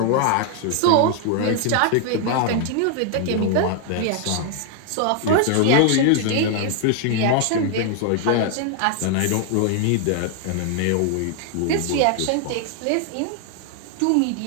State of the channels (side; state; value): both; different; correlation 0.00